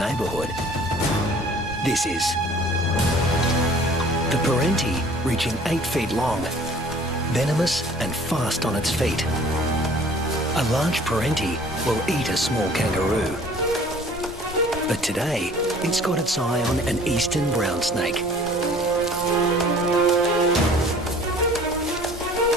This is. The parenti, reaching 8 feet long, venomous and fast on its feet. A large parenti will eat a small kangaroo. But today, it's got its eye on an eastern brown snake.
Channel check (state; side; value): normal; both; correlation 0.51